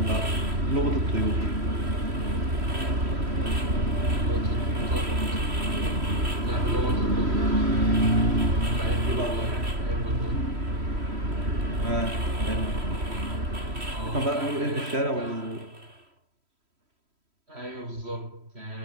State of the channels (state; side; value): late; left; 3.1 ms